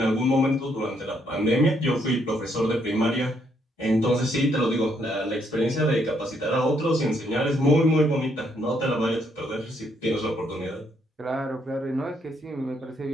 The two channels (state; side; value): normal; both; correlation 0.72